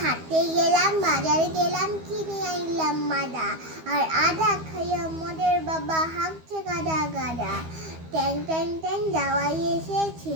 হাটে গেলাম, বাজারে গেলাম, কিনে আনলাম মাদা, আর আদা খাইয়া মদের বাবা হাঁকছে গাদা গাদা। ট্যাং ট্যাং ট্যাং যাওয়াই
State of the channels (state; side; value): late; left; 12 ms